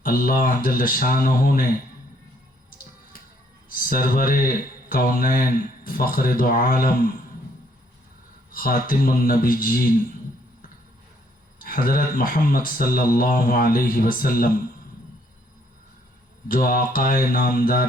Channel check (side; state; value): both; normal; correlation 0.67